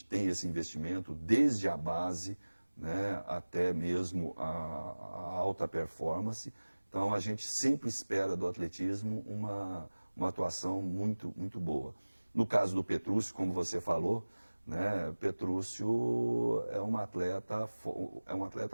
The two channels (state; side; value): inverted; both; correlation -1.00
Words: tem esse investimento desde a base, né, até mesmo a alta performance. Então a gente sempre espera do atletismo uma atuação muito boa. No caso do Petrúcio, como você falou, né, Petrúcio é um atleta